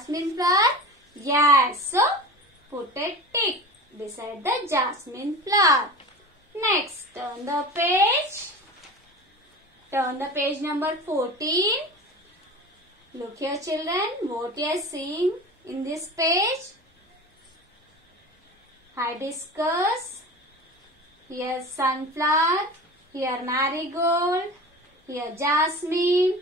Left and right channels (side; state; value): both; normal; correlation 0.33